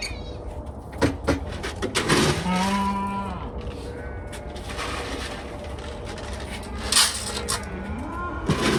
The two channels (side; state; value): both; identical; correlation 1.00